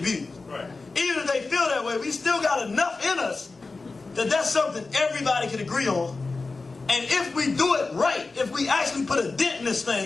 Right. Even if they feel that way, we still got enough in us that that's something everybody can agree on. And if we do it right, if we actually put a dent in this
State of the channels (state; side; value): quieter; right; 3.8 dB